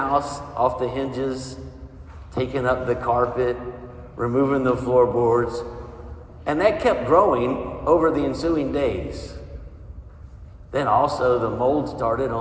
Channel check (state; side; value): identical; both; correlation 1.00